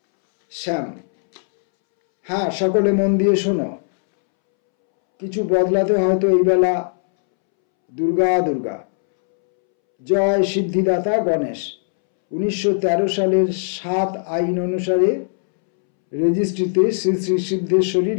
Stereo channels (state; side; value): silent; right; 67 dB below the other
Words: শ্যাম: হ্যাঁ, সকলে মন দিয়ে শোনো। কিছু বদলাতে হয়তো এই বেলা। দুর্গা দুর্গা। জয় সিদ্ধিদাতা গণেশ। 1913 সালের 7 আইন অনুসারে রেজিস্ট্রিতে শ্রী শ্রী সিদ্ধেশ্বরী